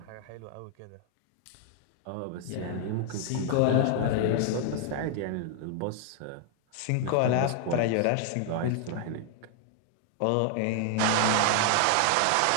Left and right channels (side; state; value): both; different; correlation 0.00